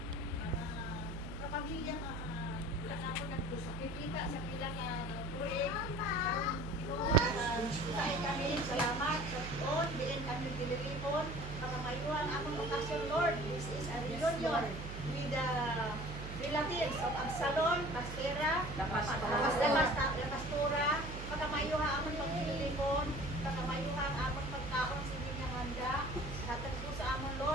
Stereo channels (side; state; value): right; noise; hum, 8 dB below the sound